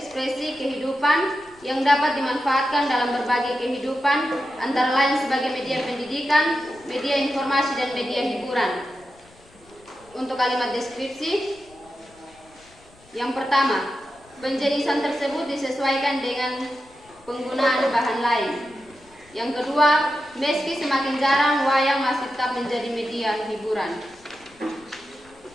kehidupan yang dapat dimanfaatkan dalam berbagai kehidupan, antara lain sebagai media pendidikan, media informasi, dan media hiburan. Untuk kalimat deskripsi, yang pertama, penjenisan tersebut disesuaikan dengan penggunaan bahan lain. Yang kedua, meski semakin jarang, wayang masih tetap menjadi media hiburan.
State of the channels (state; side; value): noise; left; rumble, 28 dB below the sound